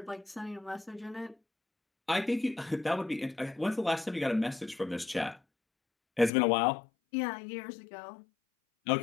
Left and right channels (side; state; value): right; drops out; at 6.3 s